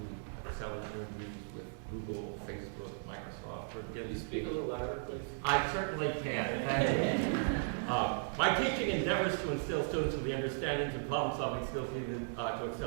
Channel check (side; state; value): left; silent; digital silence